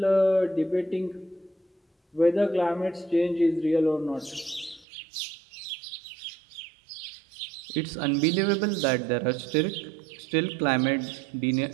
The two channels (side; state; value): left; drops out; at 4.9 s